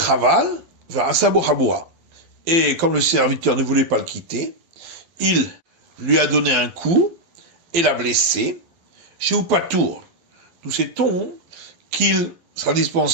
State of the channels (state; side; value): late; left; 11 ms